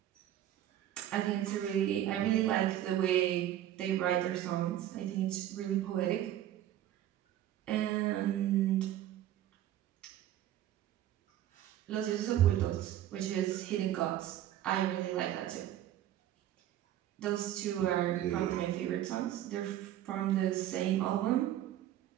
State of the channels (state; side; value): quieter; left; 12.3 dB